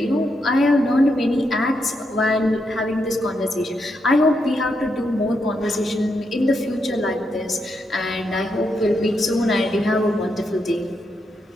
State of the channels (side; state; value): both; normal; correlation 0.81